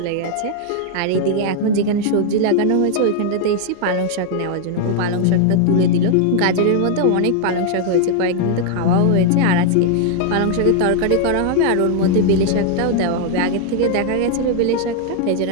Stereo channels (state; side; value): different; both; correlation 0.00